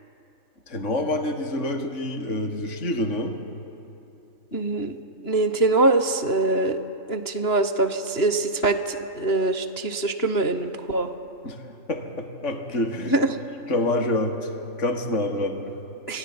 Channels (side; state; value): right; late; 3.0 ms